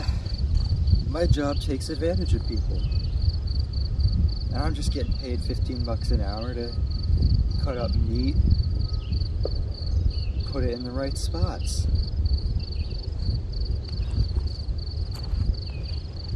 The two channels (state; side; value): identical; both; correlation 1.00